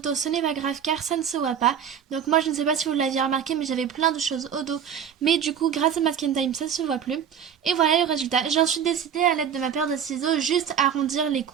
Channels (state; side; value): quieter; left; 8.2 dB